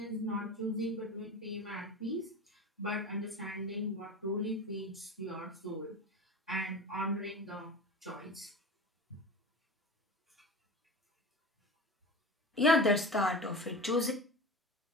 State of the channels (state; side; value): normal; both; correlation 0.31